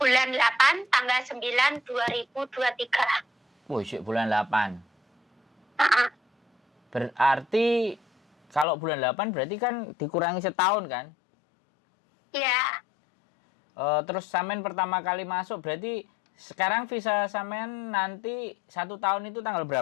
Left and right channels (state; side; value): drops out; right; at 8.7 s